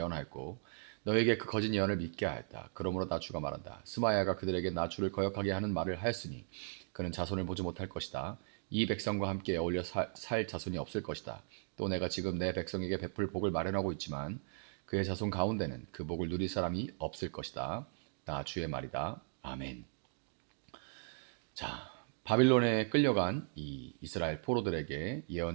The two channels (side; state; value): left; silent; digital silence